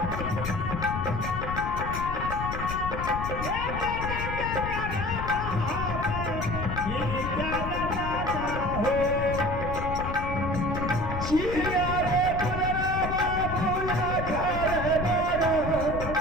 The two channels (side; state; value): left; noise; rumble, 5 dB below the sound